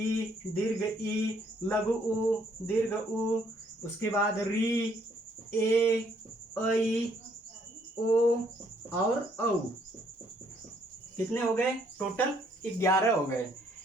दीर्घ ई, लघु उ, दीर्घ उ, उसके बाद री, ए, ऐ, ओ और औ। कितने हो गए, टोटल 11 हो गए।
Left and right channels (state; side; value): normal; both; correlation 0.67